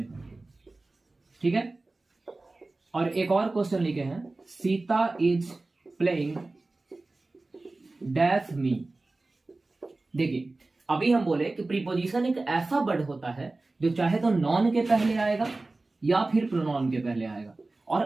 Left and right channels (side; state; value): left; quieter; 3.2 dB